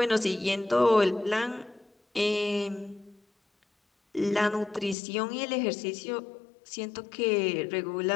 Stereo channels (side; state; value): right; drops out; at 5.0 s